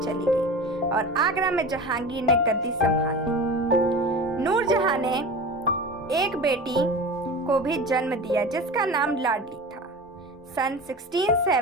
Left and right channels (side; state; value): both; normal; correlation 0.32